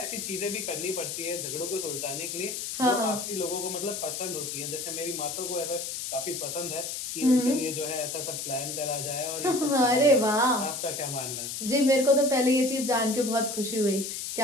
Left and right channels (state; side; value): noise; left; hiss, 5 dB below the sound